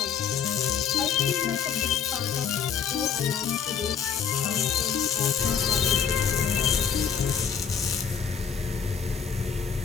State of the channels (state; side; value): quieter; right; 7.2 dB